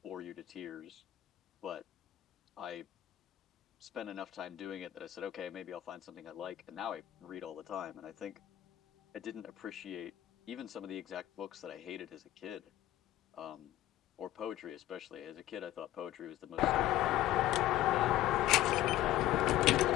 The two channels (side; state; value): right; quieter; 14.1 dB